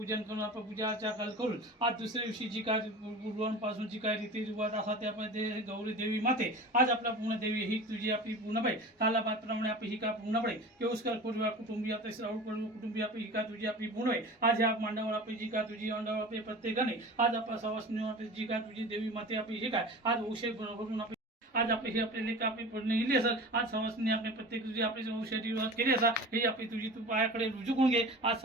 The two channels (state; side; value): normal; both; correlation 0.35